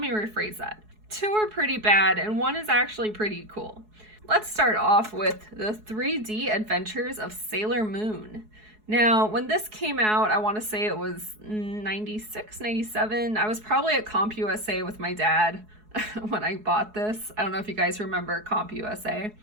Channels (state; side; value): late; left; 4.7 ms